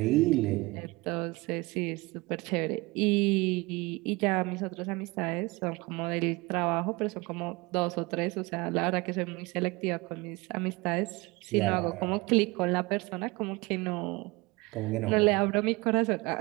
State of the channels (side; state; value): left; quieter; 23.7 dB